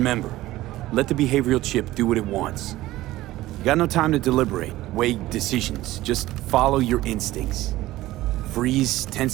let the behavioral chip do what it wants. You got no time to deliberate, weigh decisions. Just follow your instincts. Freeze,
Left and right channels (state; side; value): quieter; left; 16.5 dB